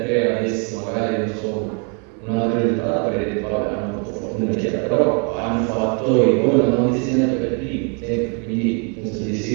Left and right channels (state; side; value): quieter; left; 37.7 dB